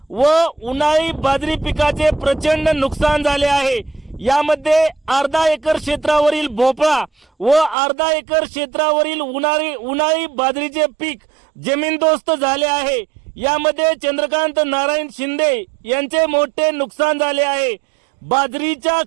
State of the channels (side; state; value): left; drops out; at 7.8 s